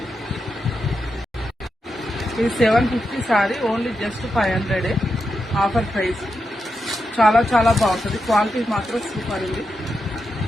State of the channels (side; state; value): both; normal; correlation 0.87